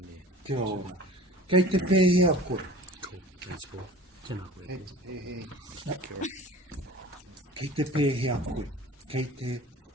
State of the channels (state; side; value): normal; both; correlation 0.41